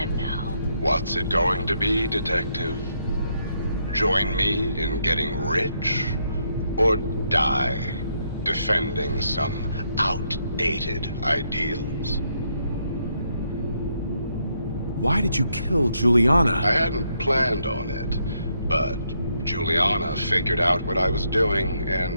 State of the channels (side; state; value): both; inverted; correlation -0.76